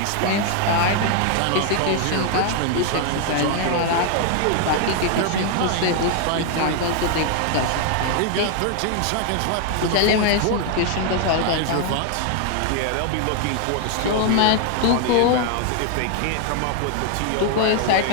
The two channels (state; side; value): different; both; correlation 0.00